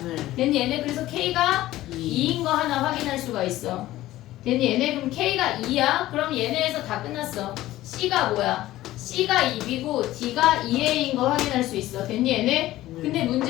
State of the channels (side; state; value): right; quieter; 15.6 dB